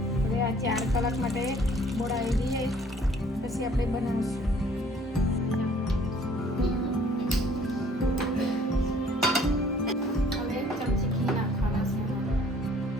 આ 4 કલાક માટે બોળાવી દઈએ, પછી આપણે બનાવીશું. હવે ચમચી ઘી નાખવાના છે.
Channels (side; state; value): both; normal; correlation 0.57